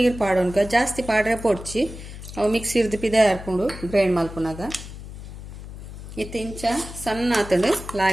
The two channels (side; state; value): left; noise; hum, 12 dB below the sound